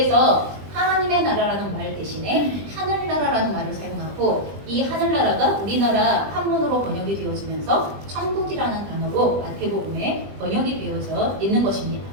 하나님의 나라라는 말 대신에 하늘나라라는 말을 사용하고 이 하늘나라가 우리나라 한문으로 번역이 되어지면서 천국이라는 단어로 마태복음에 번역이 되어져 있는 것입니다.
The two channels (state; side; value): late; left; 20 ms